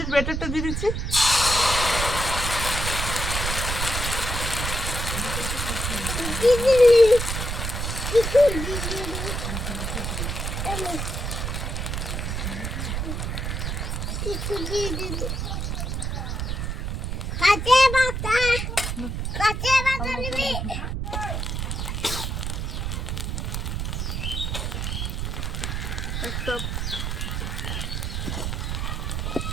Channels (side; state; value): right; noise; rumble, 2 dB below the sound